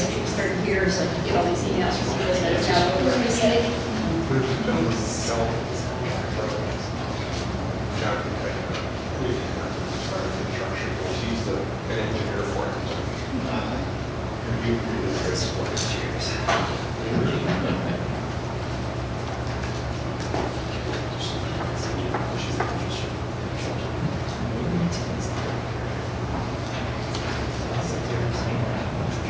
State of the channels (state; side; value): identical; both; correlation 1.00